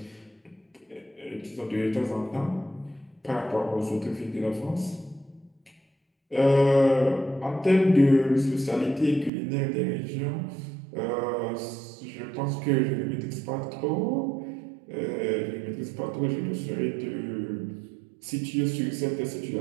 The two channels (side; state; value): left; drops out; at 9.3 s